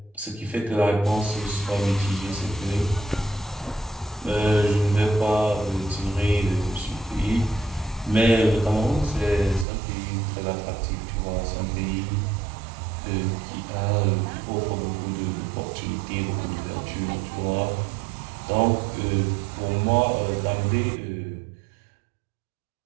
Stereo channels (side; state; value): left; drops out; at 9.7 s